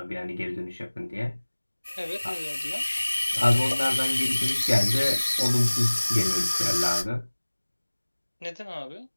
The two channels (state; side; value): inverted; both; correlation -1.00